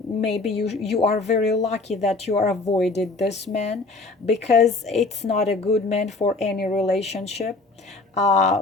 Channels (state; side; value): quieter; right; 3.4 dB